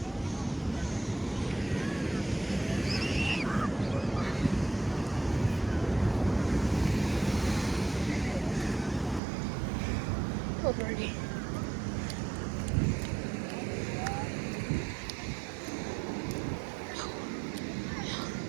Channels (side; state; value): left; drops out; at 9.2 s